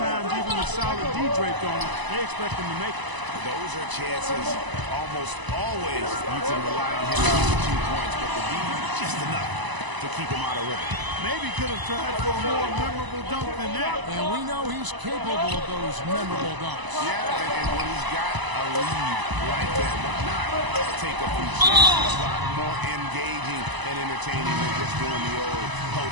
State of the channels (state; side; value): late; left; 1.0 ms